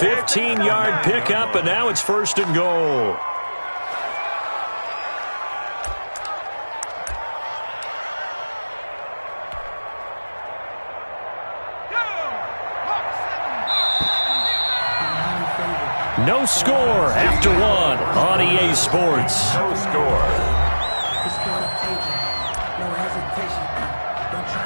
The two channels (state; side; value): inverted; both; correlation -1.00